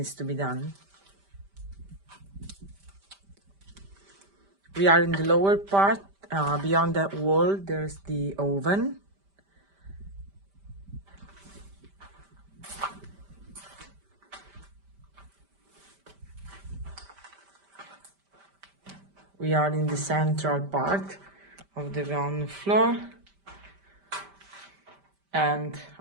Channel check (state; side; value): late; left; 5.1 ms